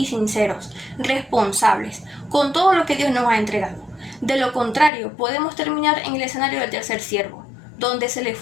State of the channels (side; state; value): right; drops out; at 4.9 s